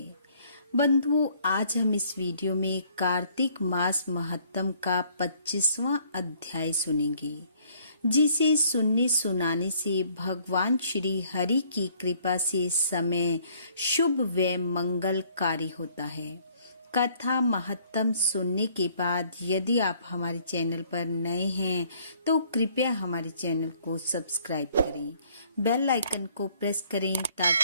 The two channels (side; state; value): both; inverted; correlation -0.62